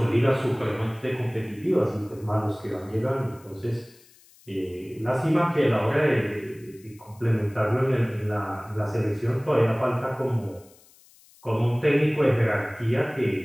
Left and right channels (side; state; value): left; noise; hiss, 27 dB below the sound